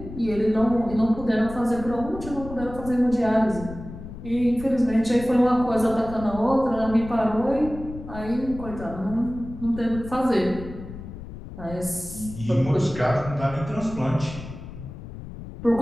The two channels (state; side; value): noise; left; rumble, 12 dB below the sound